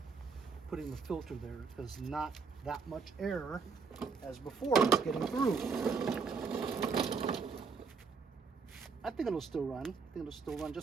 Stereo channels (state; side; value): quieter; left; 5.2 dB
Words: putting the filter there, because not that much air as before is getting through. I think it'll still run. I think it'll still run